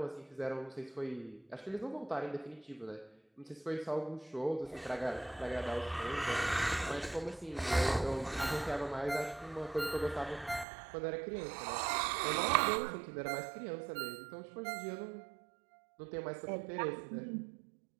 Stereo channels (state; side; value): drops out; left; at 10.7 s